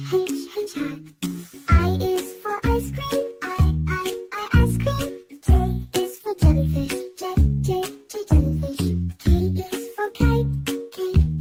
hat. I is for ice cream, I, ice cream. J is for jellyfish, J, jellyfish. K is for kite, K,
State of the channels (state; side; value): identical; both; correlation 1.00